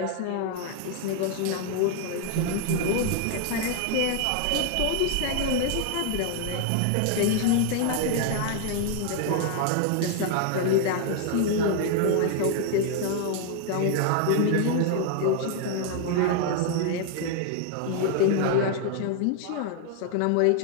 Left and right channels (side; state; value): both; different; correlation 0.00